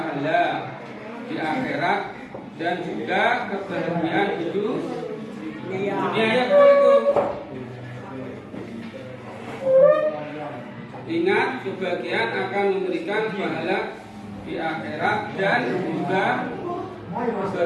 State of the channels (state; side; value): identical; both; correlation 1.00